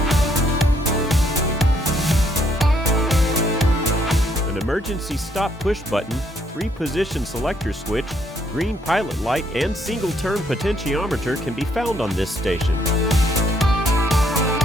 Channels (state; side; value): normal; both; correlation 0.70